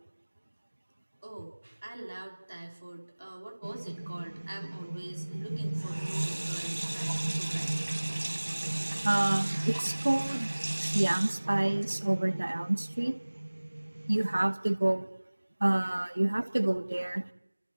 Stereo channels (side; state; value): both; inverted; correlation -1.00